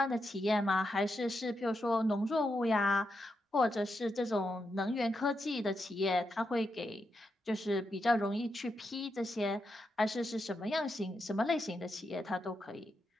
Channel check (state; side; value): normal; both; correlation 0.84